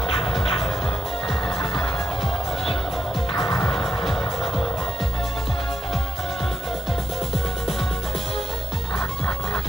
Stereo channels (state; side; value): normal; both; correlation 0.85